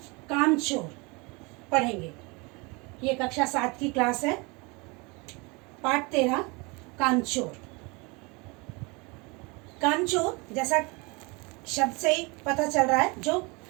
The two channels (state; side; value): quieter; left; 27.9 dB